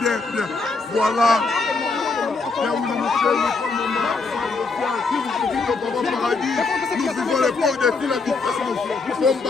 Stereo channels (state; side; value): quieter; right; 4.1 dB